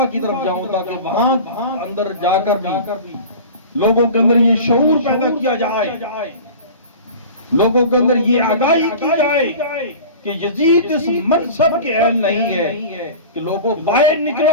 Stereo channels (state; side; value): inverted; both; correlation -0.36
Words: کی طرف جاؤں تاکہ وہاں اندر جا کر بھی لوگوں کے اندر یہ شعور پیدا کیا جائے، لوگوں کے اندر یہ آگاہی کی جائے کہ یزید اس منصب کے اہل نہیں ہے کہ لوگوں باہر